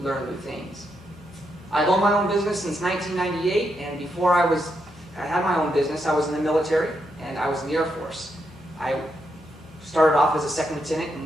learn new things. I've owned my own business since 1998, and before I had my own business, I was in the military and I was in the Air Force. I started off as a 2nd lieutenant and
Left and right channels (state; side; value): normal; both; correlation 0.81